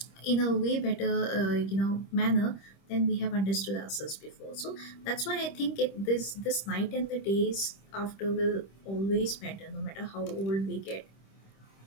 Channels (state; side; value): late; right; 26 ms